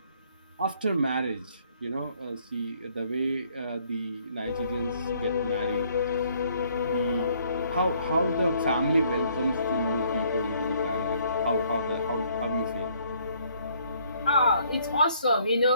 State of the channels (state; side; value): inverted; both; correlation -0.65